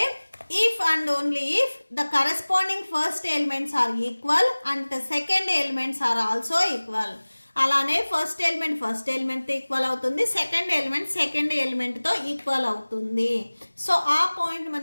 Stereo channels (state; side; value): inverted; both; correlation -1.00